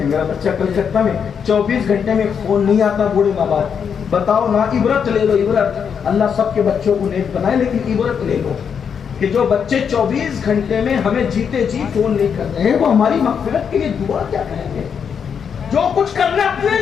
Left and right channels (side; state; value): right; quieter; 7.1 dB